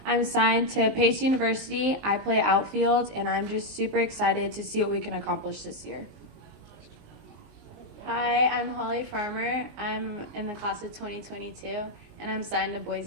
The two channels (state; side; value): late; left; 19 ms